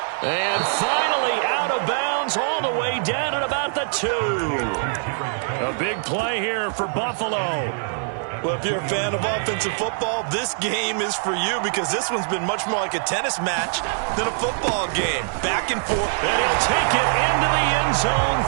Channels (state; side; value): silent; left; 60 dB below the other